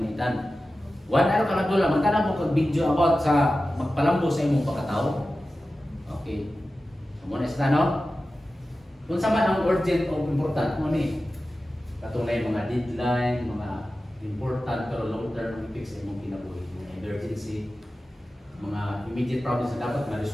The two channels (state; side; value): normal; both; correlation 0.94